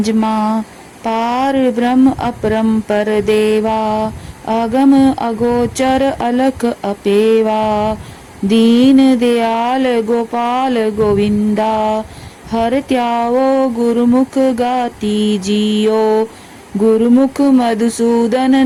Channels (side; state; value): both; identical; correlation 1.00